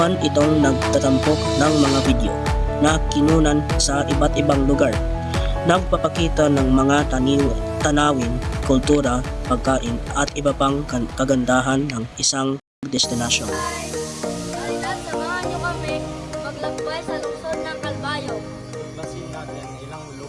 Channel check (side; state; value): both; identical; correlation 1.00